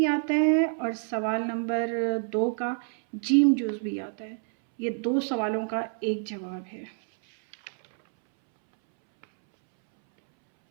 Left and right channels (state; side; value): silent; left; 60 dB below the other